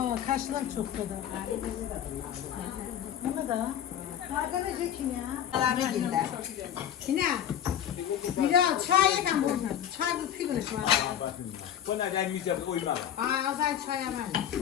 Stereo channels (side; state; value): right; quieter; 9.9 dB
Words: kaşlar çok da. Bunu da. Arkadaş için ya. Abi gider. Yine. Bir daha çay yakan bunu. Çay bu pigülüş var. Buna gelmeyeceğim uyma. Azay çay yaman.